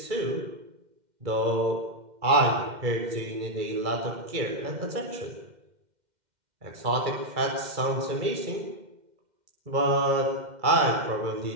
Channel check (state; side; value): late; left; 2.1 ms